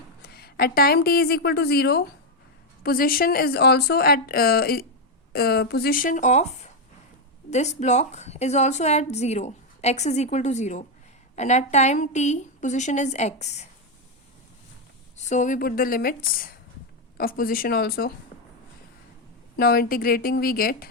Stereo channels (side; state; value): both; normal; correlation 0.03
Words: At time t is equal to 0, position is also at position of this block is also at 0, x is equal to 0, and at time t position is x. So we put the limits of position also. Now integrating we get